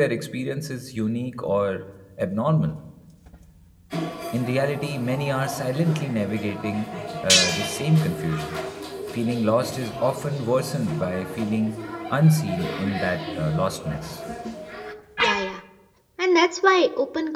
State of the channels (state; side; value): identical; both; correlation 1.00